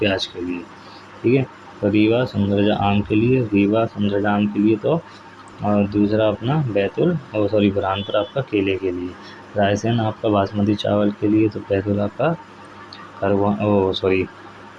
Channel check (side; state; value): both; identical; correlation 1.00